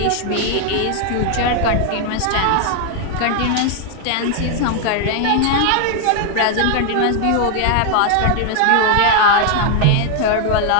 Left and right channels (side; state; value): both; different; correlation 0.00